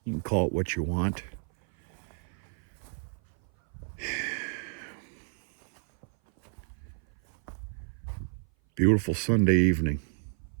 You can call it what you want. Beautiful Sunday evening.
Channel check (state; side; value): silent; left; 56 dB below the other